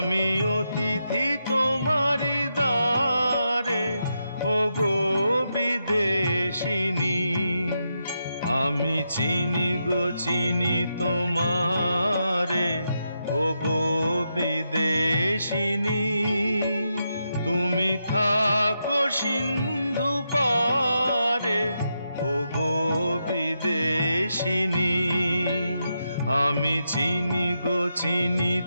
অতিথি তোমারি দ্বারে ও গো বিদেশিনী আমি চিনি গো চিনি তোমারে ও গো বিদেশিনী তুমি থাকো সিন্ধু পারে ও গো বিদেশিনী আমি চিনি গো চিনি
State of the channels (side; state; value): both; inverted; correlation -0.84